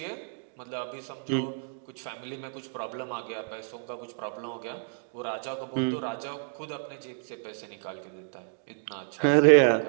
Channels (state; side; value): silent; left; digital silence